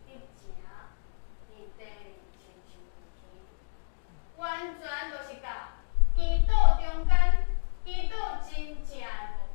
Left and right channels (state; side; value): silent; right; digital silence